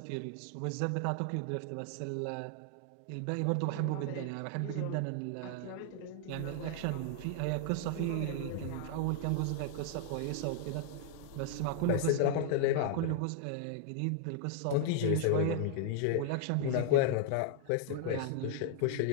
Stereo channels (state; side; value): different; both; correlation 0.00